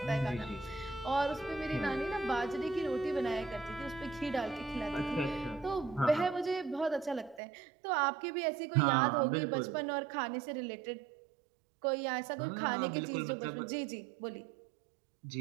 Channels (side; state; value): left; drops out; at 7.4 s